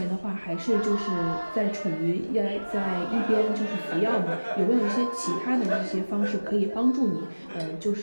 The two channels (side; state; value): both; inverted; correlation -1.00